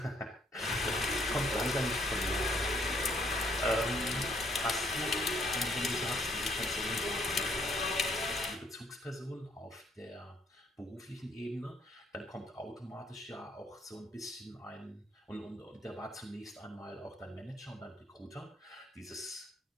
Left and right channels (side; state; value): both; normal; correlation 0.67